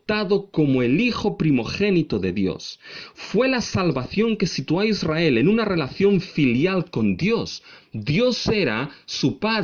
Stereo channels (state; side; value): identical; both; correlation 1.00